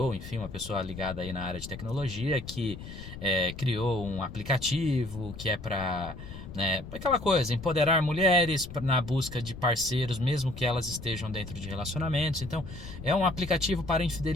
enfim, uma pessoa ligada aí na área de tecnologia, que criou um aplicativo que é para, aquela coisa, empoderar mulheres na busca de parceiros, mesmo que elas estejam dentro de relacionamentos. Então, é um aplicativo para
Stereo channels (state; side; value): noise; left; rumble, 12 dB below the sound